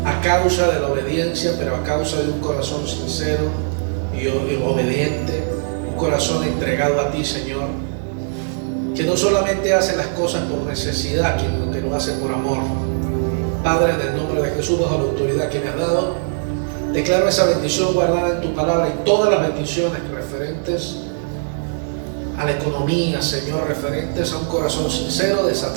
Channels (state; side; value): silent; left; digital silence